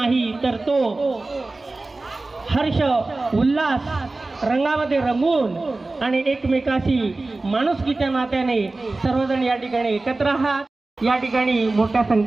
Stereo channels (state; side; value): quieter; left; 3.2 dB